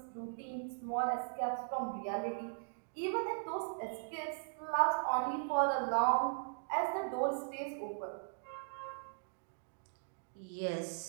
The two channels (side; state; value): left; silent; digital silence